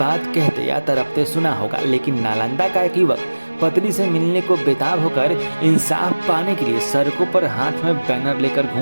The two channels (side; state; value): both; inverted; correlation -1.00